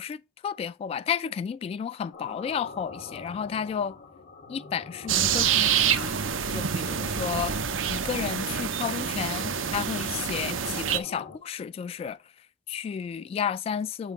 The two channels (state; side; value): normal; both; correlation 0.09